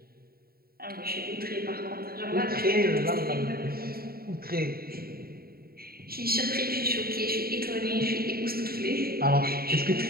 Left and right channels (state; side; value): late; left; 0.44 ms